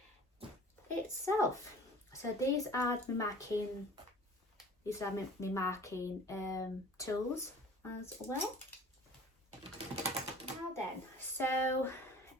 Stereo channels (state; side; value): normal; both; correlation 0.46